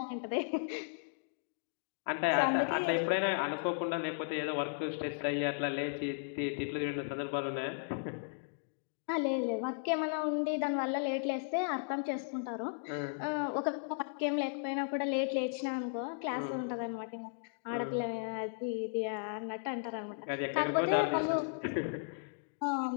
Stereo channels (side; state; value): right; silent; digital silence